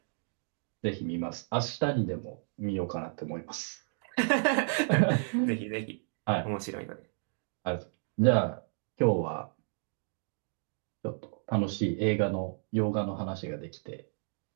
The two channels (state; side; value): silent; left; digital silence